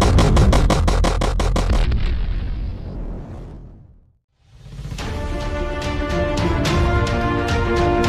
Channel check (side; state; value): both; identical; correlation 1.00